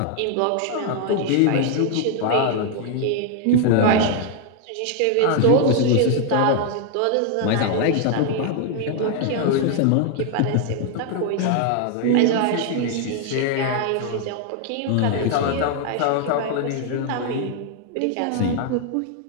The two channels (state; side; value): different; both; correlation 0.00